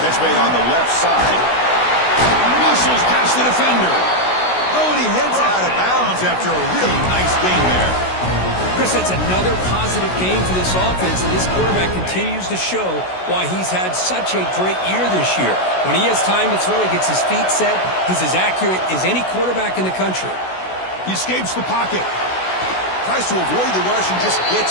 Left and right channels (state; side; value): late; right; 16 ms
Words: Catch made on the left side. Muscles past the defender. Oh, and he heads out of bounds after a really nice game there. Chris, that's another positive game for this offense, and this quarterback continues to show why he's had such a great year this year. When he has time to throw, he gets his feet set. He's as accurate as any quarterback in the country. He escapes the pocket. Tries to avoid the rush and just